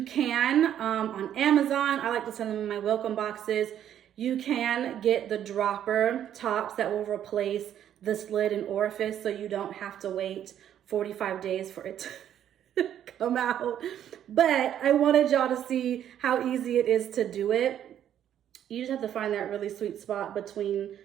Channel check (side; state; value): left; quieter; 10.3 dB